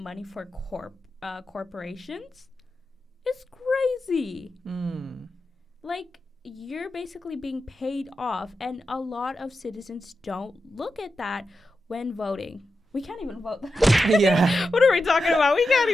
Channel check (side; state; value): both; normal; correlation 0.90